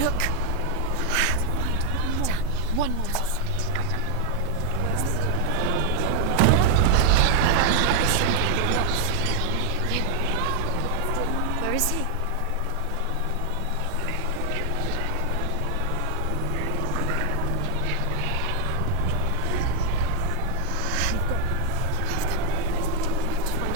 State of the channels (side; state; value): both; different; correlation 0.00